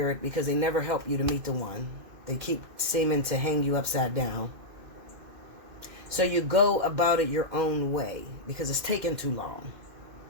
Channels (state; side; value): late; left; 2.5 ms